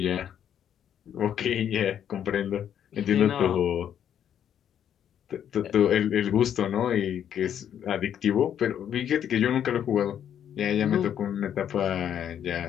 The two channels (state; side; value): quieter; right; 9.5 dB